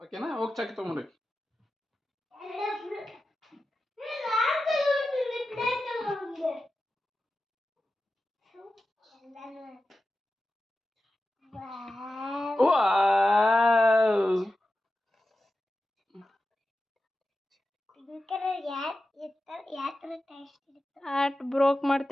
ಓಕೆನಾ? ಹೋಗಿ ಚಾಕಿ ತಗೊಂಡ್ರಿ. ಹಾರ್ಟ್ ಬ್ರೋಕ್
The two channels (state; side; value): normal; both; correlation 0.93